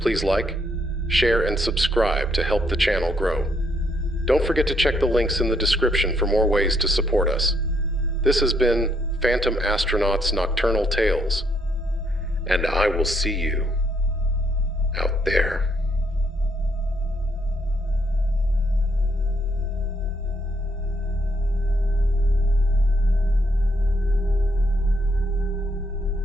like, share, and subscribe to help the channel grow. Don't forget to check the links in the description for more ways to support us. This has been Phantom Astronaut's Nocturnal Tales, and I will see you out there.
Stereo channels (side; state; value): both; normal; correlation 0.72